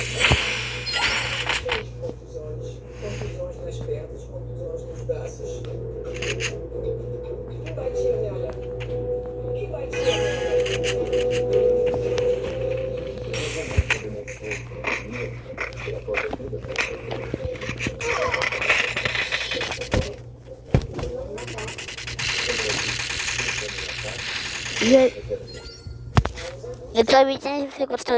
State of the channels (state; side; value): identical; both; correlation 1.00